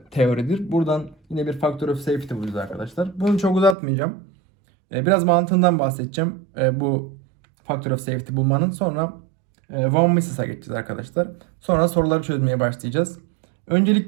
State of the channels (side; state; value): left; drops out; at 3.8 s